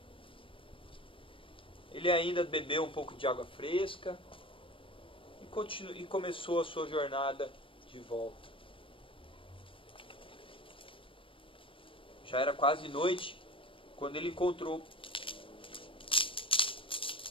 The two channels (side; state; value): right; late; 0.25 ms